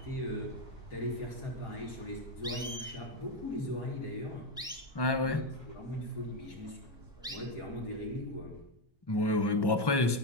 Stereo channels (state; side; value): normal; both; correlation 0.08